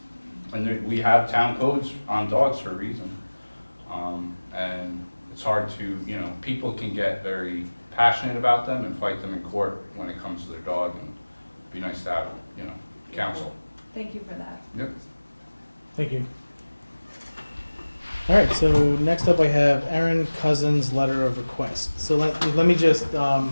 And we have town codes on dogs for a reason. And it's hard to, people can get very passionate about them and fight them in court when it comes to their dog, and it'd be nice to have, counsel. Thank you for that. Yep. Thank you. All right, so next up I have Aaron Cousins' letter of request. So let me just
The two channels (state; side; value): inverted; both; correlation -1.00